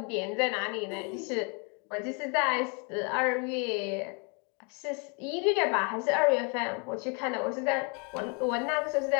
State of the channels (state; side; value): quieter; right; 35.3 dB